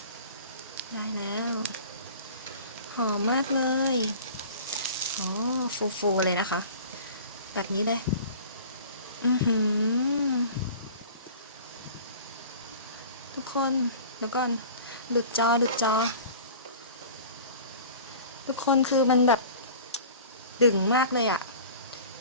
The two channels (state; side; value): inverted; both; correlation -0.41